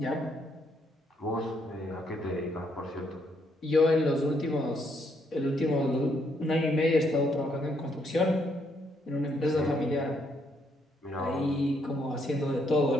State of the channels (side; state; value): both; normal; correlation 0.73